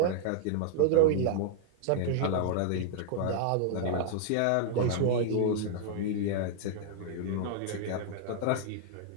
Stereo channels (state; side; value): different; both; correlation -0.01